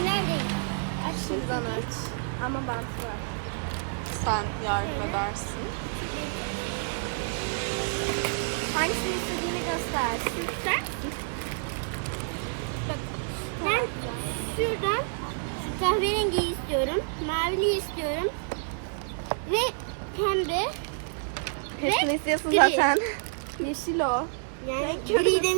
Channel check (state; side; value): silent; left; digital silence